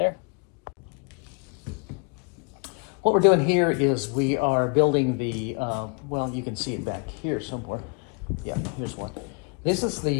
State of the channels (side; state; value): right; quieter; 37.4 dB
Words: What we're doing here is we are building the, well, you can see it back here somewhere. Yeah, here's one. This is